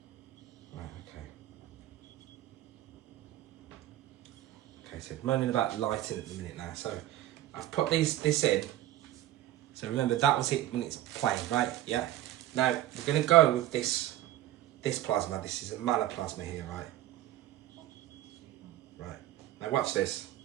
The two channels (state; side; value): quieter; left; 13.8 dB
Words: Right, okay. Okay, so moaning about lighting at the minute now. So I've put this in. So remember, that was it when it's plain, right? Yeah. Now we're going to go with this plasma. This is a manoplasma here, right? Right. Now watch this.